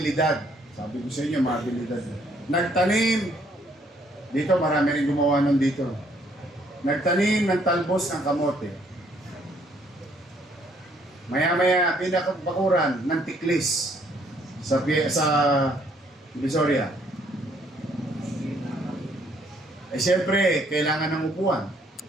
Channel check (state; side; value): normal; both; correlation 0.66